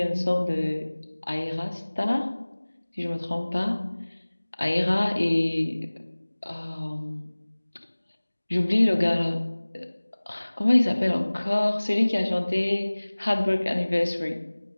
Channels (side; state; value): both; inverted; correlation -1.00